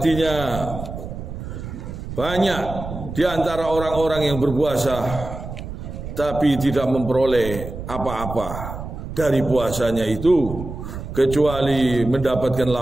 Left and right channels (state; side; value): noise; right; rumble, 9 dB below the sound